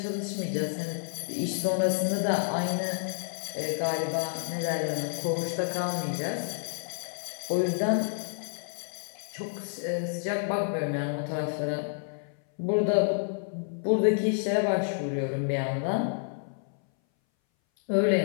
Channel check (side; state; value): right; silent; 58 dB below the other